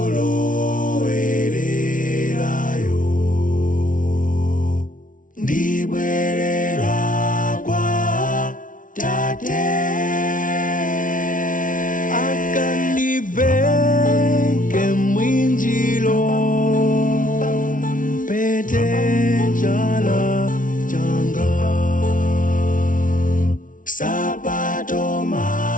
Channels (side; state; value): right; late; 0.38 ms